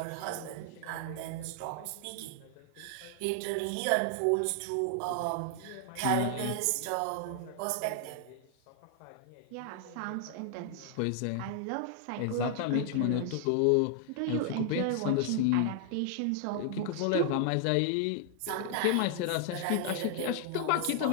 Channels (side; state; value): both; different; correlation 0.00